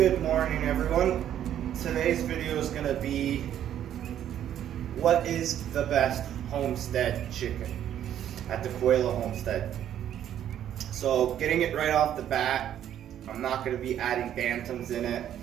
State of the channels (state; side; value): quieter; left; 10.6 dB